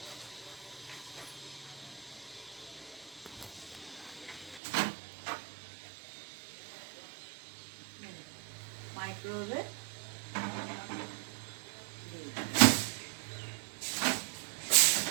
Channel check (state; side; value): drops out; left; at 4.6 s